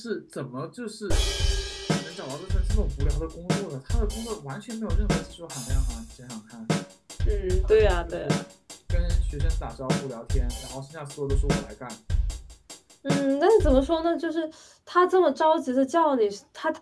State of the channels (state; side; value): identical; both; correlation 1.00